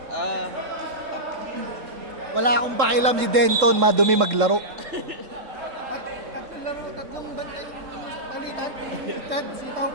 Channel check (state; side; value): late; left; 3.7 ms